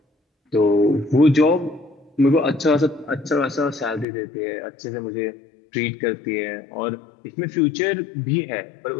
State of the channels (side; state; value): right; drops out; at 4.0 s